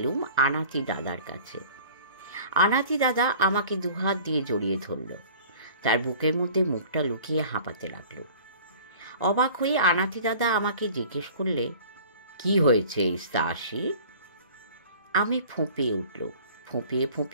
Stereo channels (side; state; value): both; inverted; correlation -0.47